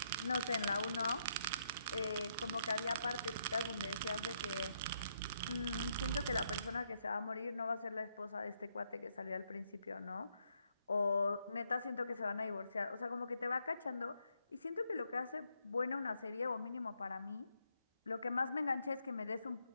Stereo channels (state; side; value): inverted; both; correlation -0.76